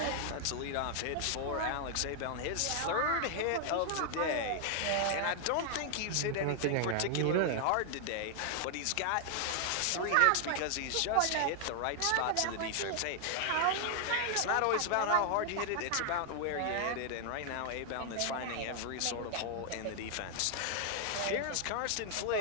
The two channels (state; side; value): different; both; correlation 0.00